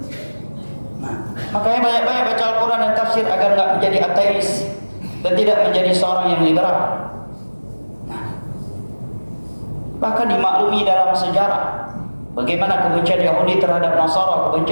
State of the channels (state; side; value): inverted; both; correlation -1.00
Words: Nah, makanya banyak-banyak baca Al-Quran dan tafsir agar nggak menjadi ateis dan tidak menjadi seorang yang liberal. Nah, bahkan dimaklumi dalam sejarah bagaimana kebencian Yahudi terhadap Nasara,